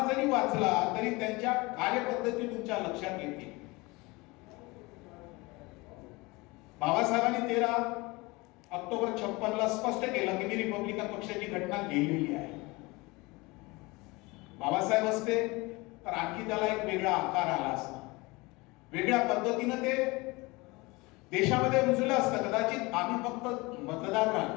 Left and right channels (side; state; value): right; quieter; 24.0 dB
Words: जरी वाचला तरी त्यांच्या कार्यपद्धती तुमच्या लक्षात येतील. बाबासाहेबांनी 13 ऑक्टोबर 56 ला स्पष्ट केलं की मी रिपब्लिकन पक्षाची घटना लिहिलेली आहे. बाबासाहेब असते तर आणखी त्याला एक वेगळा आकार आला असता, वेगळ्या पद्धतीनं ते देशामध्ये रुजलं असतं. कदाचित आम्ही फक्त मतदार